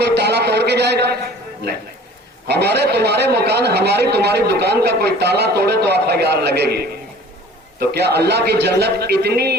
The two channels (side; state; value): both; normal; correlation 0.47